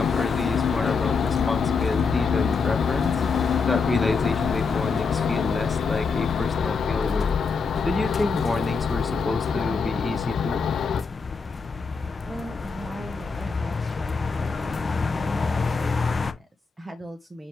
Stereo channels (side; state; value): right; quieter; 4.9 dB